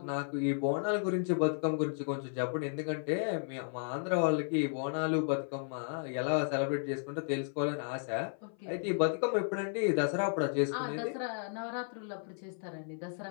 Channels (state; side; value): silent; right; 55 dB below the other